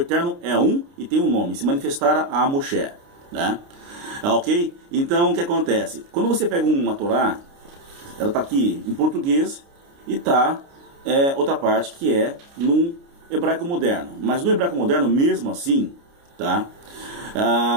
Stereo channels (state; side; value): late; left; 29 ms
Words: é um e tem um nome, se manifestara a Moshe, né? Ok? Então o que acontece? Quando você pega uma Torá, ela está aqui em português e está outra parte que é no hebraico moderno. Mas no hebraico moderno, mesmo assim, tá?